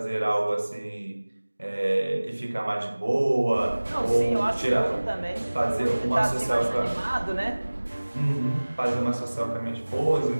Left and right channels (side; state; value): both; inverted; correlation -1.00